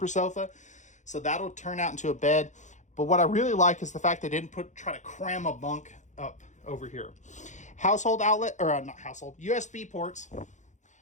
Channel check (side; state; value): right; late; 0.35 ms